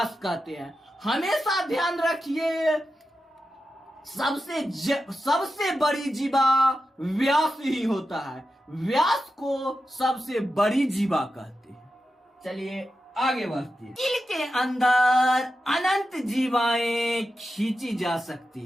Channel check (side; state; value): both; normal; correlation 0.90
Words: कहते हैं। हमेशा ध्यान रखिए, सबसे बड़ी जीवा व्यास ही होता है। व्यास को सबसे बड़ी जीवा कहते हैं। चलिए आगे बढ़ते हैं। दिल के अंदर अनंत जीवाएं खींची जा सकती